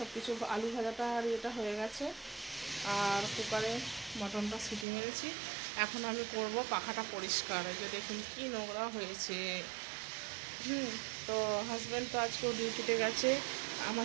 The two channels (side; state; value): left; drops out; at 4.9 s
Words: কিছু, আলু ভাজাটা আর এটা হয়ে গেছে, আর কুকারে মটনটা সিটি মেরেছি। এখন আমি করব পাখাটা পরিষ্কার। এই যে দেখুন কি নোংরা হয়েছে। তো হাজব্যান্ড তো আজকেও ডিউটিতে গেছে।